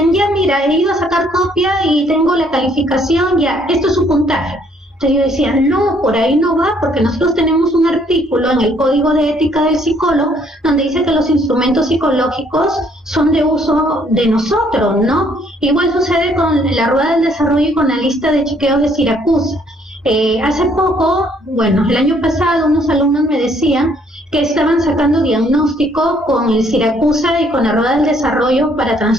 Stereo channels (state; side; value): normal; both; correlation 0.65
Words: ya mira, he ido a sacar copia y tengo la calificación, ya, esto es su puntaje. Entonces yo decía, no, por ahí no va, porque nosotros tenemos un artículo en el Código de Ética del Psicólogo donde dice que los instrumentos psicológicos son de uso de nosotros, ¿no? Igual sucede con la rueda del desarrollo y con la lista de chequeos de Siracusa. Hace poco, bueno, el año pasado, unos alumnos me decían que estaban sacando diagnóstico con el Siracusa y con la rueda del desarrollo para